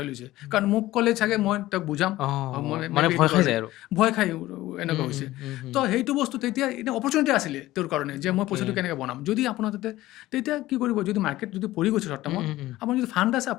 লৈছে, কাৰণ মোক ক'লে চাগে মই তাক বুজাম, মানে ভয় খাই যায় আৰু। ভয় খাই এনেকুৱা হৈছে। তো সেইটো বস্তু তেতিয়া এতিয়া অপৰচুনিটি আছিলে তেওঁৰ কাৰণে, যে মই পইচাটো কেনেকৈ বনাম। যদি আপোনাৰ তেতিয়া কি কৰিব? যদি মাৰ্কেট যদি পৰি গৈছে শ্বৰ্ট টাৰ্মত, আপোনাৰ যদি ফাণ্ড আছে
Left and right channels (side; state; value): right; quieter; 16.6 dB